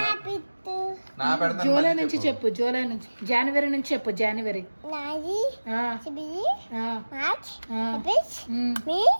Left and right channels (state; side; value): inverted; both; correlation -1.00